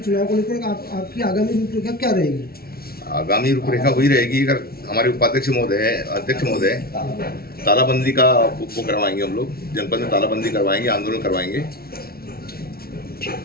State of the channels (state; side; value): late; right; 0.44 ms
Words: चुनाव को लेकर आपकी आगामी रूपरेखा क्या रहेगी? आगामी रूपरेखा वही रहेगी। अगर हमारे उपाध्यक्ष महोदय अध्यक्ष महोदय तालाबंदी का वो करवाएंगे, हम लोग जनपद में तालाबंदी करवाएंगे, आंदोलन करवाएंगे